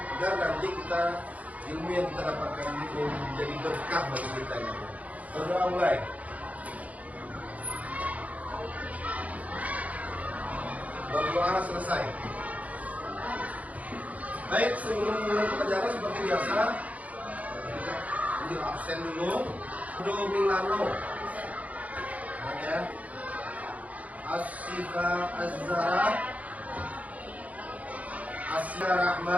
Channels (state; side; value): late; left; 0.070 ms